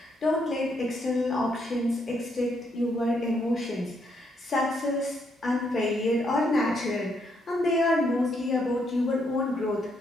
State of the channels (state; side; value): normal; both; correlation 0.75